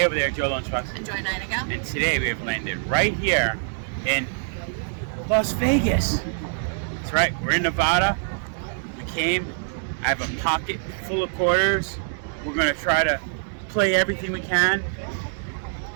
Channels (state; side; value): silent; left; digital silence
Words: over there, Joe Lunchbox. Enjoy Nightingale. And today we have landed right here in Las Vegas. That's right, we're in Nevada. We came, I have a pocket full of quarters. We're gonna try to play everything we can.